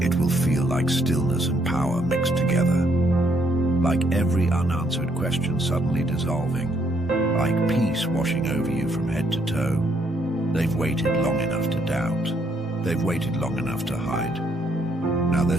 It will feel like stillness and power mixed together. Like every unanswered question suddenly dissolving. Like peace washing over you from head to toe. They've waited long enough to doubt. They've waited long enough to hide. Now they're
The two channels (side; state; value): both; normal; correlation 0.71